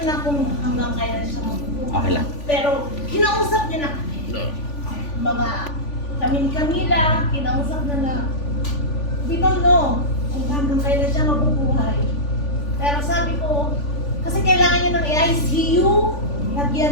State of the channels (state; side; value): late; right; 3.5 ms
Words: na kung hanggang kailan siya magpupunta. Okay lang. Pero kinausap niya na kami. Mga kami ni Camila, kinausap na we don't know kung hanggang kailan siya mabubuhay. Pero sabi ko, kasi kailangan niya ng ICU, lagyan